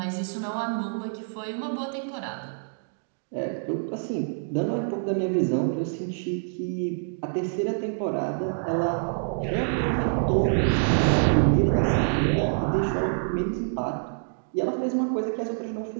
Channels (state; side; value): silent; left; digital silence